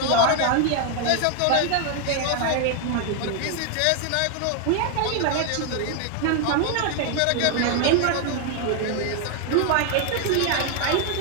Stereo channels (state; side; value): different; both; correlation 0.00